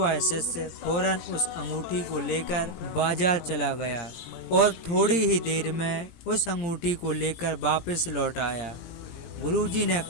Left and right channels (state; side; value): late; right; 18 ms